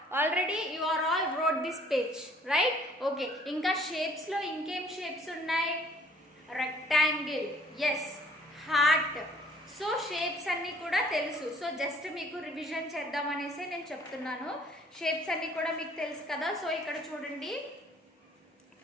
Already you are all wrote this page, right? Okay. Inka shapes lo inkem shapes unnai? Rectangle. Yes. Heart. So shapes అన్నీ కూడా తెలుసు. So just మీకు revision చేద్దామనేసి నేను చెప్తున్నాను. Shapes అన్నీ కూడా మీకు తెలుసు కదా. సో ఇక్కడ చూడండి,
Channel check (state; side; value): normal; both; correlation 0.58